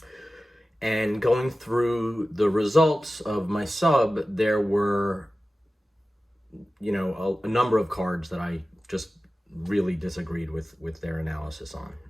And going through the results of my sub, there were, a number of cards that I just really disagreed with their analysis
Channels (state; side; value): normal; both; correlation 0.95